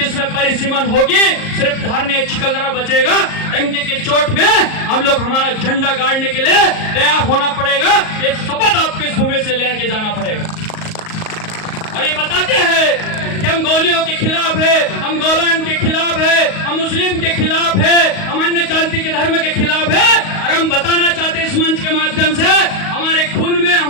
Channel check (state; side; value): late; right; 38 ms